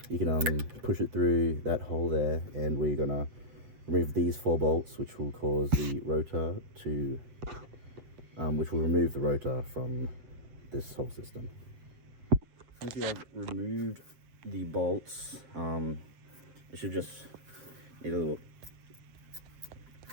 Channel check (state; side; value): late; left; 8.2 ms